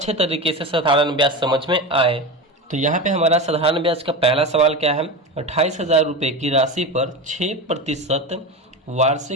तरीके से साधारण ब्याज समझ में आए। तो यहाँ पे हमारा साधारण ब्याज का पहला सवाल क्या है, 28,000 रुपये की राशि पर 6%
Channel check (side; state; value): both; normal; correlation 0.23